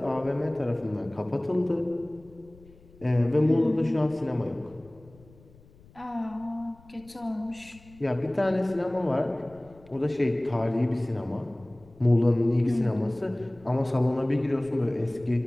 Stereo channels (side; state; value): left; noise; rumble, 25 dB below the sound